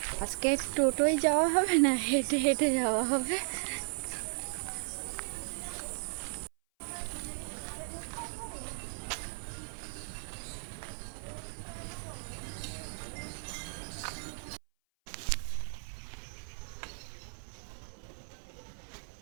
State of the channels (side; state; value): left; silent; 54 dB below the other